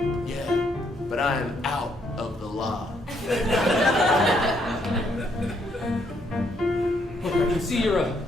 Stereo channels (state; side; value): normal; both; correlation 0.72